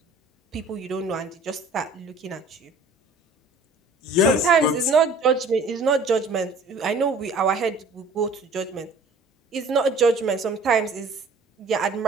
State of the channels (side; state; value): left; quieter; 3.1 dB